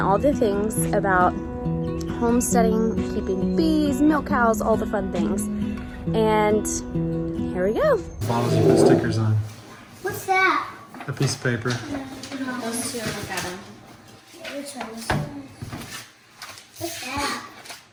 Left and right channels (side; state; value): both; identical; correlation 1.00